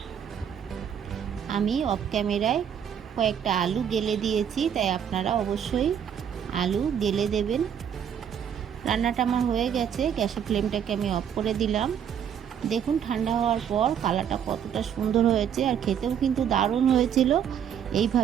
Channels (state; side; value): quieter; left; 8.6 dB